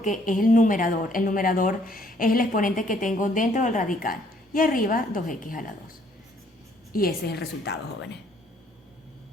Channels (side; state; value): both; normal; correlation 0.64